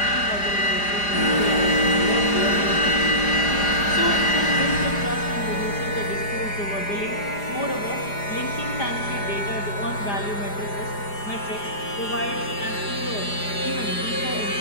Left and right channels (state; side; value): late; right; 4.9 ms